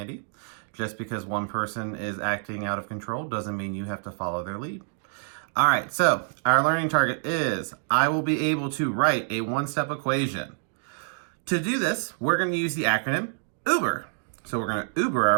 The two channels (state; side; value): silent; left; digital silence